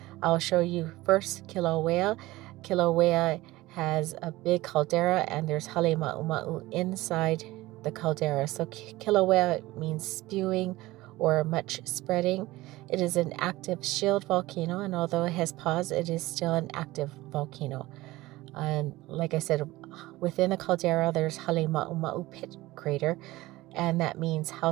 I'll show you first Kilauea. Kilauea has a big caldera and there's hale ma'u inside the caldera. So Kilauea means spewing or much spreading. It is an active shield volcano, and although it has paused, it is still an active volcano. And like I said, within the caldera, there's Hale Ma'u pit crater, and that means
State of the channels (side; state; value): left; quieter; 18.6 dB